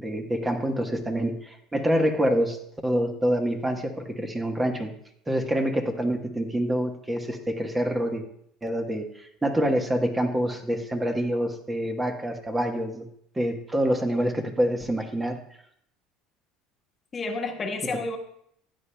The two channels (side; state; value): both; normal; correlation 0.88